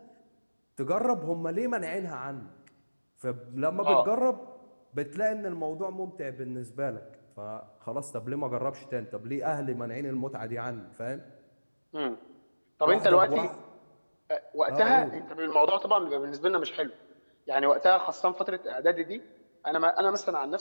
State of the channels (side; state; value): both; inverted; correlation -1.00